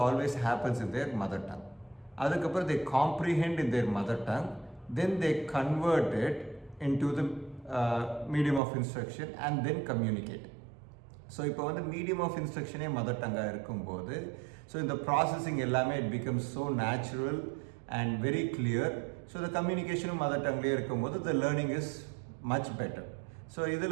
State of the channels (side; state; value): left; drops out; at 8.6 s